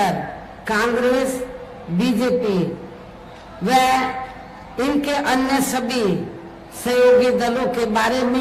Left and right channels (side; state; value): both; identical; correlation 1.00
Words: कांग्रेस, बीजेपी व इनके अन्य सभी सहयोगी दलों के बारे